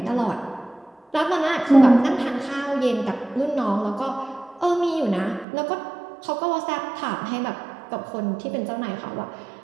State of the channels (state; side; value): drops out; left; at 5.5 s